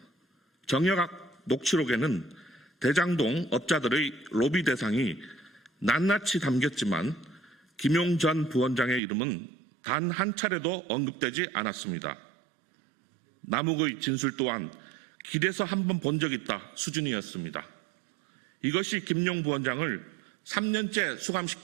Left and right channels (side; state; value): left; drops out; at 9.0 s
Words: 정여각 녹취록에는 대장동 업자들의 로비 대상이 낱낱이 담겼지만 김용 전 부원장의 이름은 단 한 차례도 언급되지 않았습니다. 남욱의 진술 또한 길에서 한번 본 적 있다 수준이었습니다. 이것이 김용 부원장을 3년째